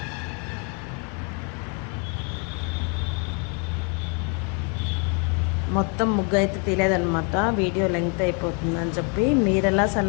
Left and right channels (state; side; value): quieter; right; 36.8 dB